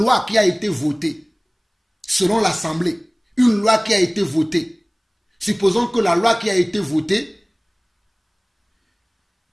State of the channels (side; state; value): both; identical; correlation 1.00